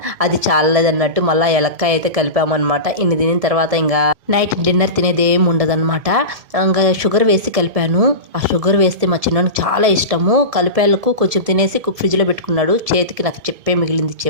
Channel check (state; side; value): late; left; 1.7 ms